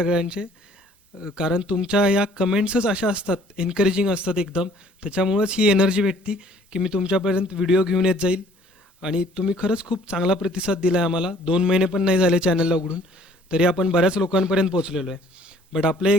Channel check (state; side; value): normal; both; correlation 0.57